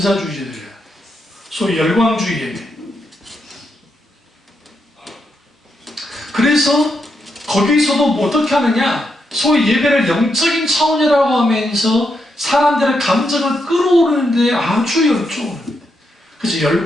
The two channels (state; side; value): normal; both; correlation 0.82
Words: 소위 열광주의 예배. 그래서 거기서도 뭐 어떻게 하느냐, 소위 예배를 영적인 차원이라고 하면서 사람들의 감정을 끌어오르는데 아주 열중을, 그래서